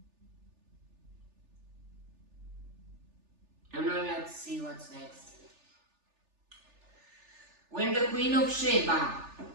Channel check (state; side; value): late; left; 3.4 ms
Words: And now let's see what's next. When the Queen of Sheba